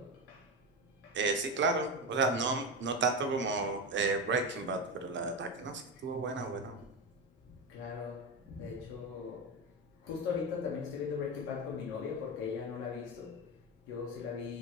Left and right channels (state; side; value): normal; both; correlation 0.16